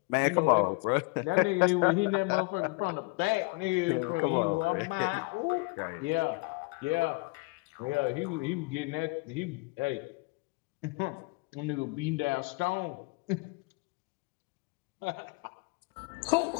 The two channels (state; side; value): quieter; right; 27.8 dB